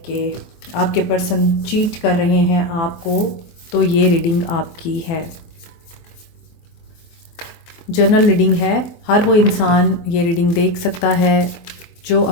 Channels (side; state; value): right; late; 24 ms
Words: कि आपके पर्सन चीट कर रहे हैं आपको, तो ये रीडिंग आपकी है। जनरल रीडिंग है, हर वो इंसान ये रीडिंग देख सकता है जो